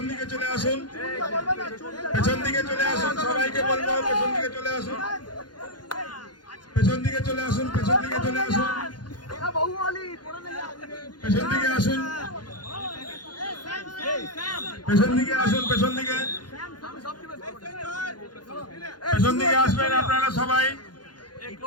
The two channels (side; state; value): right; late; 0.70 ms